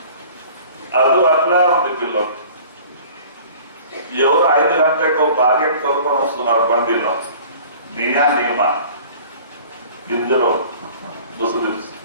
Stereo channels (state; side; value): inverted; both; correlation -0.46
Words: అది అట్లా ఉంది పిల్లలు. ఎవరు 5 గంటలకు భార్యను కొనుక్కొని వస్తున్నారు బండిలో. నియమ గింజలో ముసుగు